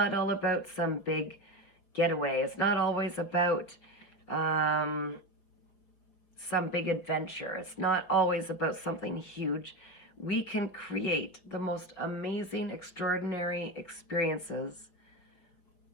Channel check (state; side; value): late; right; 5.4 ms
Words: all about some big getaway. It's not always about some big adventure. It's not always about something huge. We can create the most amazing, extraordinary experiences